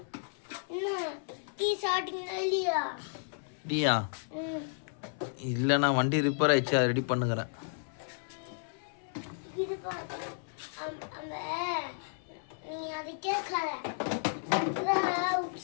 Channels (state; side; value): silent; right; 56 dB below the other